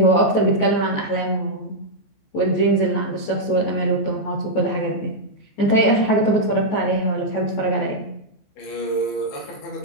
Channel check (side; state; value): right; late; 14 ms